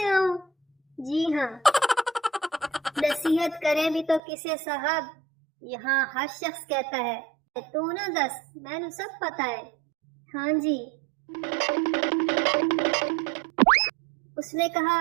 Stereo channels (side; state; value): left; drops out; at 4.2 s